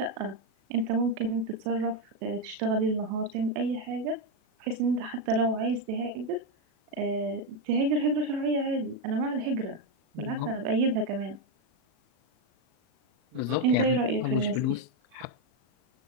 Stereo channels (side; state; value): left; late; 37 ms